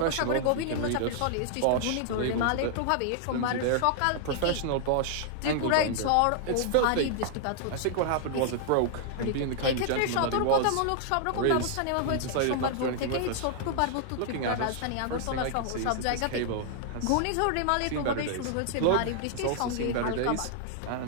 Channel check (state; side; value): different; both; correlation -0.01